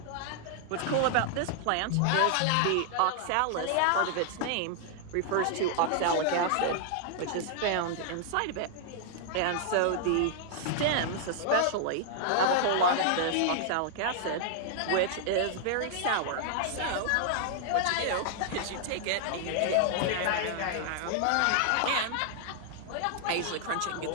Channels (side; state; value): both; different; correlation -0.01